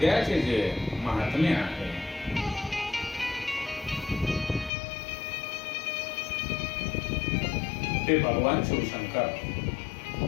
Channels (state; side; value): drops out; right; at 4.7 s